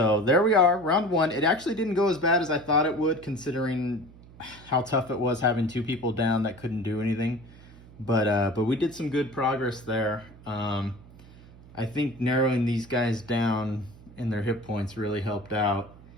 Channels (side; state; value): right; noise; hum, 21 dB below the sound